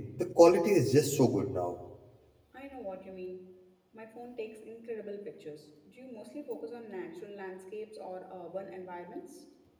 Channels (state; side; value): identical; both; correlation 1.00